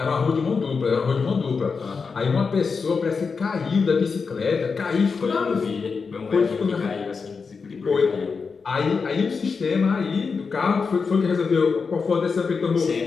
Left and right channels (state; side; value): quieter; right; 5.1 dB